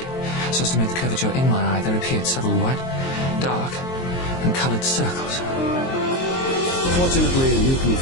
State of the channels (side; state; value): right; late; 23 ms